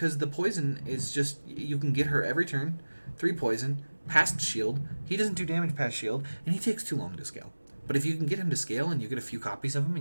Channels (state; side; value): inverted; both; correlation -1.00